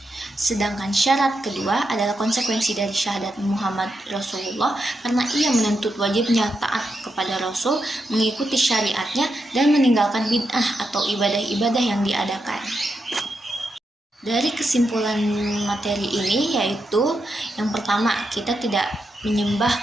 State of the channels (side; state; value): both; normal; correlation 0.85